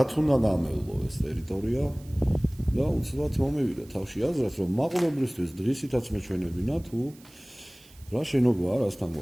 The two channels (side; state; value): right; noise; hiss, 25 dB below the sound